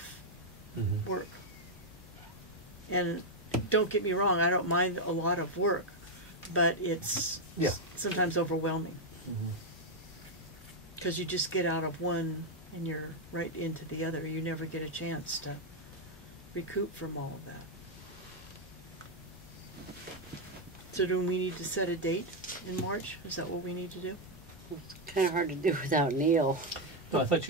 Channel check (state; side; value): normal; both; correlation 0.02